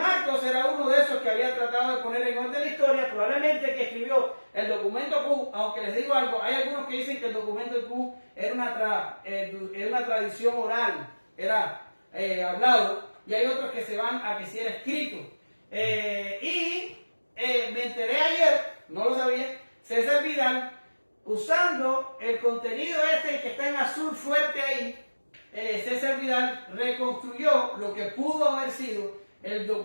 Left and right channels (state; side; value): inverted; both; correlation -1.00